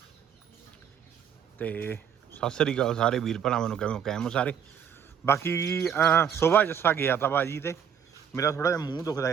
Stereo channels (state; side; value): quieter; left; 8.2 dB